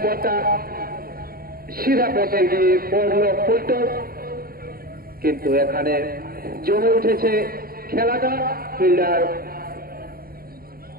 বলটা সিধা পথে গিয়ে পড়ল ফুলটস। কিন্তু এখানে জমে উঠেছে খেলাটা। ফিল্ডার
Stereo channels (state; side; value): late; left; 0.43 ms